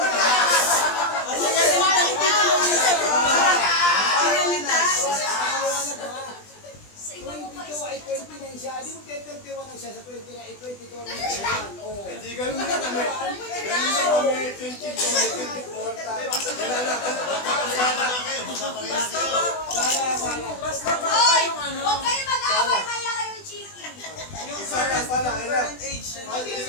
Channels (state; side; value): late; right; 20 ms